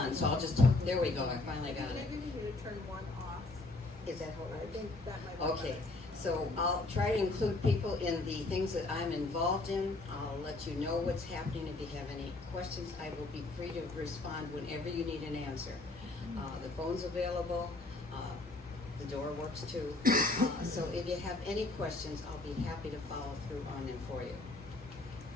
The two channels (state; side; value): quieter; right; 3.1 dB